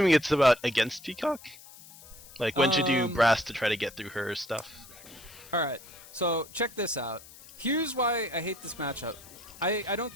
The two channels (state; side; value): noise; left; hiss, 19 dB below the sound